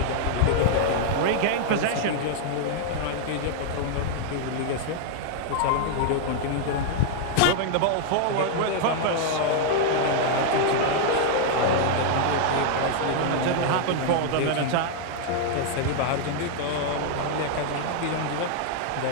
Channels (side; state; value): both; different; correlation 0.00